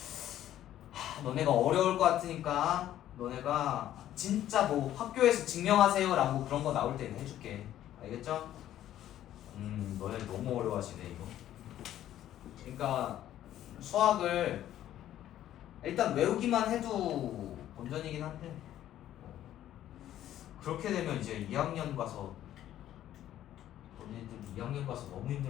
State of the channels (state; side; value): quieter; right; 12.3 dB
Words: 너네가 어려울 것 같으니까 너네가 진짜 뭐 학교에서 증명하세요 라고 그런 거 나올 때는 해줄게. 알겠죠? 너네 너무 어려워하시네 이거. 그러니까 수학을 일단 외우기만 해도 본전이긴 한데 그렇게 되면 이제 2학년 가서 너네들 2학년 가서 너무